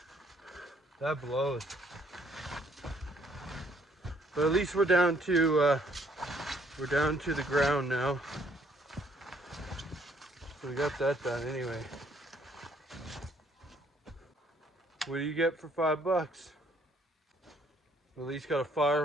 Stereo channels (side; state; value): both; normal; correlation 0.65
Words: That blows. But at least we're down to the ground now. So we got that done anyway. What do you get for $5? At least got a